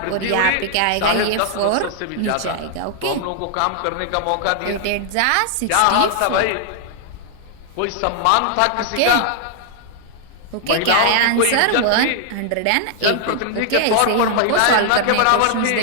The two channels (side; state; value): both; different; correlation -0.01